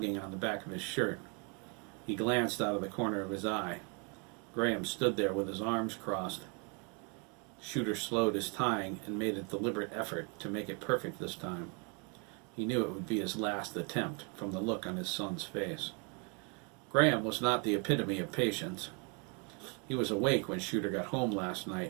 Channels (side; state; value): left; quieter; 35.2 dB